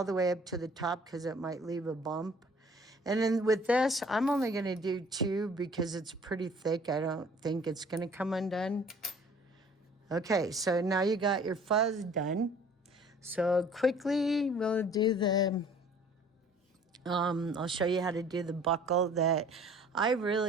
the way up to the top because it might leave a bump. And then with this, I'm only going to do 2 because it's pretty thick. I don't think it's going to come undone. Okay, so now you got your fuzz done. So quickly, we'll do the, I'll show you how to do the buckle that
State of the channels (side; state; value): both; normal; correlation 0.52